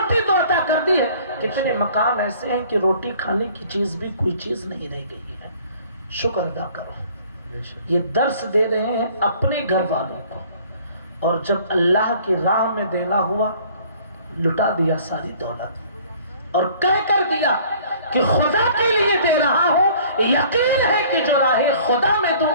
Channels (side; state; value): both; inverted; correlation -0.53